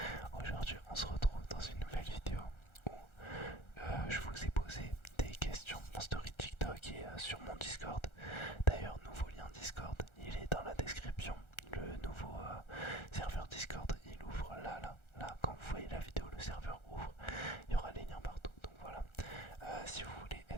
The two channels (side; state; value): right; late; 1.4 ms